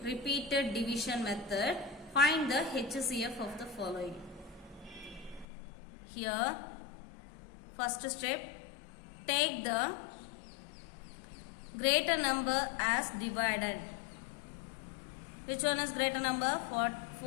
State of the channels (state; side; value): drops out; right; at 5.5 s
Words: repeated division method, find the HCF of the following. Here, first step, take the greater number as dividend. Which one is greater number?